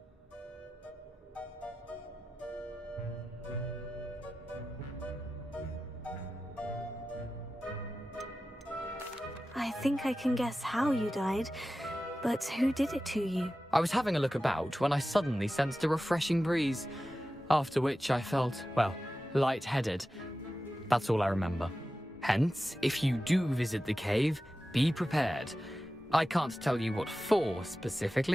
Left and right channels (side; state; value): both; normal; correlation 0.94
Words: I think I can guess how you died, but who did it to you? I was having a look about when I suddenly sensed a refreshing breeze, after which I felt, well, lightheaded. That's all I remember. Hence, if you do visit the cave, be prepared. I can't tell you what for